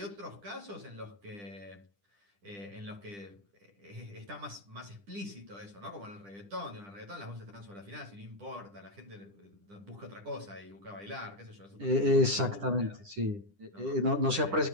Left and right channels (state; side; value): late; left; 10 ms